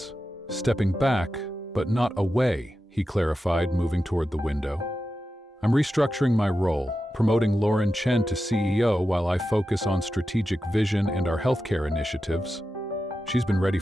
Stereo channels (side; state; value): both; normal; correlation 0.91